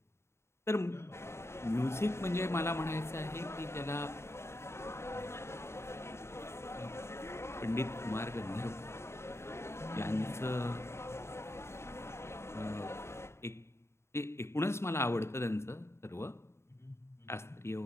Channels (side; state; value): right; late; 0.13 ms